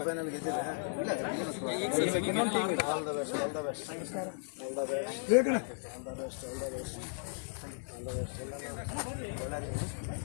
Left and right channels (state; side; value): silent; right; 54 dB below the other